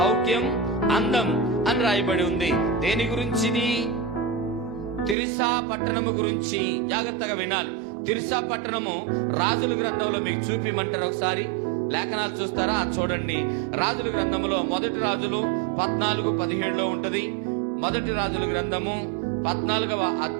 అందం అని రాయబడి ఉంది. దేని గురించిది? తిర్సా పట్టణము గురించి. జాగ్రత్తగా వినాలి. తిర్సా పట్టణము రాజుల గ్రంథంలో మీకు చూపిమంటారు. ఒకసారి లేఖనాలు చూస్తారా? చూడండి. రాజుల గ్రంథములో మొదటి రాజులు 14:17 ఉంటది. మొదటి రాజుల గ్రంథము 14వ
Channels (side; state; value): left; drops out; at 5.2 s